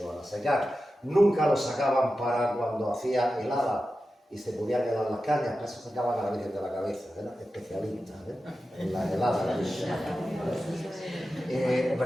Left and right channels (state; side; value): normal; both; correlation 0.92